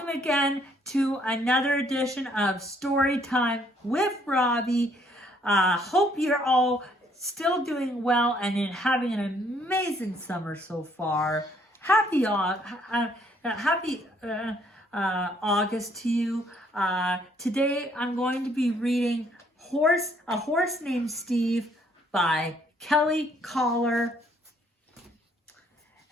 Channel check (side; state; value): both; normal; correlation 0.66